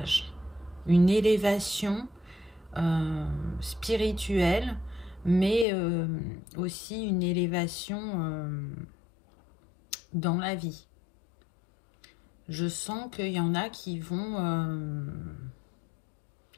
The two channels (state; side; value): drops out; right; at 5.7 s